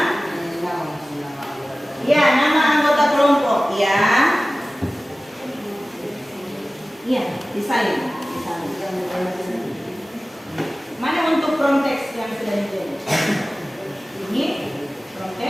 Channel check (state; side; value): normal; both; correlation 0.97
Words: Ya, nama anggota kelompok. Ya. Iya, disalin. Mana untuk prompt text yang sudah dibuat? Ini prompt